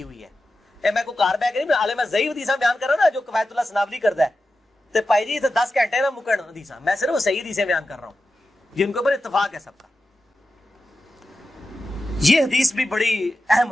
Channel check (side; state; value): both; normal; correlation 0.92